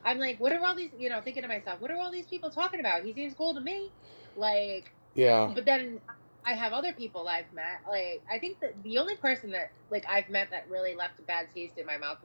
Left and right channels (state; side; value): inverted; both; correlation -1.00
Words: I'm like, what are all these, you know, thinking to myself, what are all these people talking about? He seems cool to me. Like, Yeah. but then I have other people I've met. Like, I think that the only person that, like, I've met that really left a bad taste in my mouth